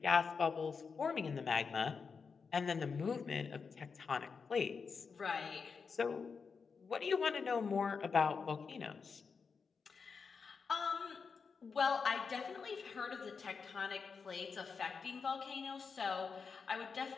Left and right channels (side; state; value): right; quieter; 5.4 dB